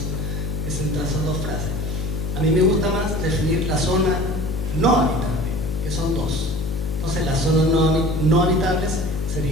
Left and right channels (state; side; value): noise; left; hum, 3 dB below the sound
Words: frases. A mí me gusta más definir la zona no habitable, que son dos. Entonces las zonas no habitables